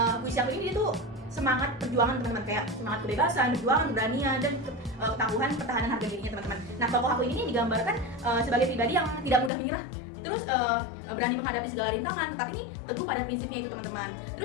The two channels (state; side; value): drops out; right; at 9.5 s